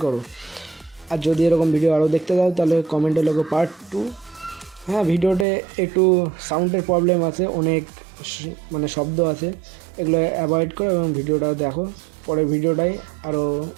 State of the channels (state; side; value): drops out; left; at 5.5 s